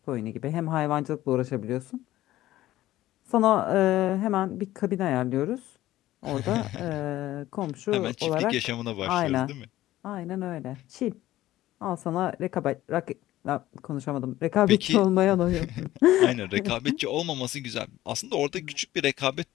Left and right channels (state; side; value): quieter; right; 15.1 dB